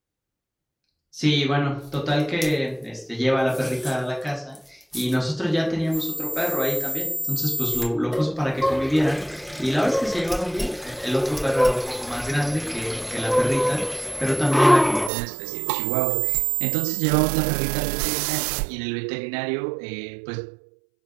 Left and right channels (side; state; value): left; drops out; at 15.1 s